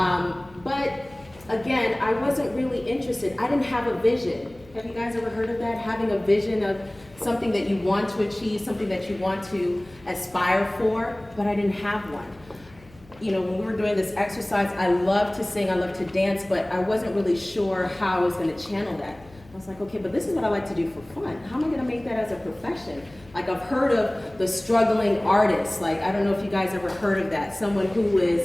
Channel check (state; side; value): noise; left; hum, 24 dB below the sound